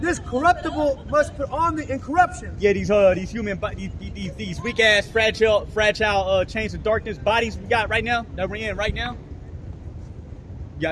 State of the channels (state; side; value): identical; both; correlation 1.00